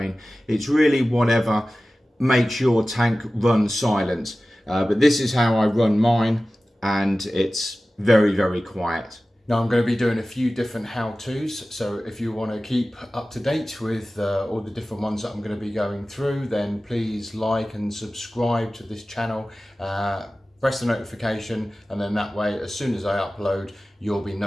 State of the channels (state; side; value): normal; both; correlation 0.96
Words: It's really whatever makes your tank run silent. But this is how I run mine, and it's very quiet. Now I'm going to be doing a few different how-tos, so if you want to keep up to date with all the different ones that I'm going to be going through, then please like and subscribe to this channel, press the notification, and then that way as soon as I upload you'll be